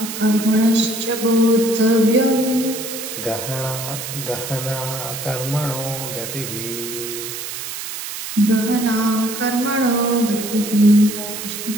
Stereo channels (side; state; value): right; noise; hiss, 7 dB below the sound